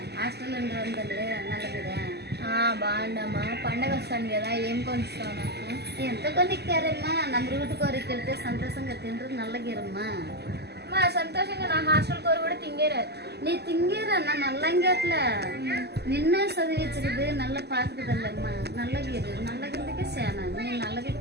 hostel ఉండాలి నల్లగిరా బాగుండమ్మా. పండగ వస్తాను కదా, ఏం కొనిస్తావు నాకు? ఎంత కొనిక్కారమ్మా నమ్మరుగుట్టు కోరికెళ్తే సంతోషంగా తింటారు నల్లగిరమ్మా. మా సంతోషంగా నా హాస్టల్ కోరు కూడా తింగేరారు. நீ திங்கிறன்னா நல்லங்கேட்ல நின்ன చదివించదు నల్ల పాకుదల్లమ్మా నల్లగిరికి సేనా నీ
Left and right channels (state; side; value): late; left; 0.48 ms